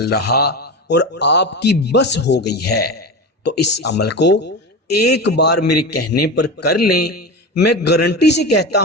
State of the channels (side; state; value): both; normal; correlation 0.24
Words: رہا اور آپ کی بس ہو گئی ہے، تو اس عمل کو ایک بار میرے کہنے پر کر لیں۔ میں گارنٹی سے کہتا